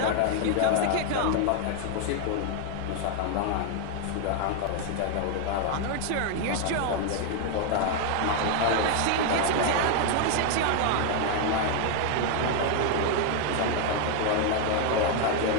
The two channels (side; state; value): both; different; correlation 0.01